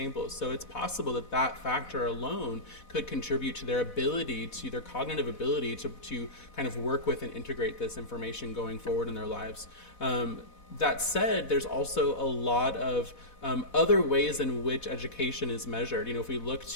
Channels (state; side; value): late; right; 4.1 ms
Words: So it's possible that that factor alone could contribute to their ability, to their cognitive ability to kind of work with and integrate this information going forward in their lives. That said, there's also a lot of other ways in which education is measured. If we look